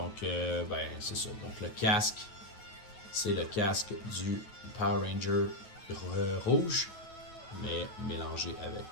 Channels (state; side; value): late; right; 9.3 ms